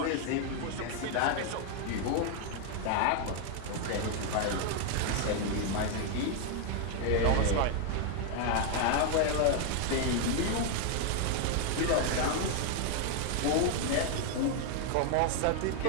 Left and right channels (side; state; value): both; different; correlation 0.00